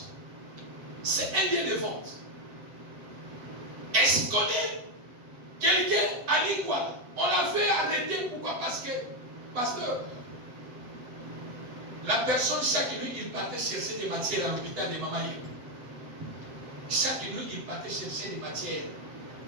C'est un lieu de vente. Est-ce qu'on connaît quelqu'un à l'Iguala? On l'a fait arrêter. Pourquoi? Parce que, pasteur, la personne, chaque nuit, il partait chercher des matières à l'hôpital de Mamaï. Chaque nuit, il partait chercher des matières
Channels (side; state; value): left; late; 8.0 ms